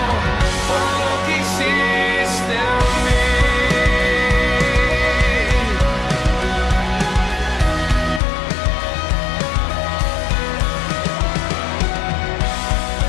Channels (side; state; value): right; drops out; at 8.2 s